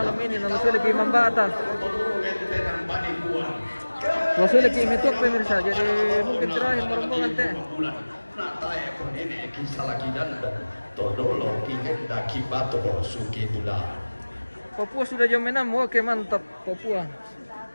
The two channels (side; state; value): both; inverted; correlation -1.00